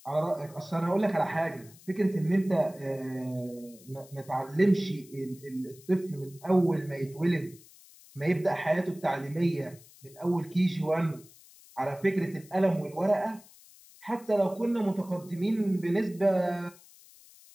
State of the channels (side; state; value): left; noise; hiss, 23 dB below the sound